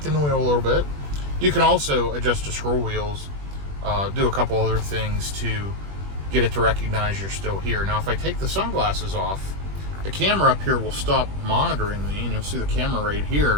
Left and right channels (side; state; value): left; late; 21 ms